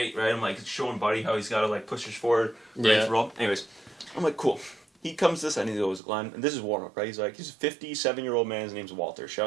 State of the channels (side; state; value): left; drops out; at 6.0 s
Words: right? I'm like showing Buddy how he's got to like push his forward, right, roll. Anyways, I'm like, cool. he comes to this and he goes, Glenn, and this is warm up, right? He's like, he's a 57-year-old man. His name's Walter. Shout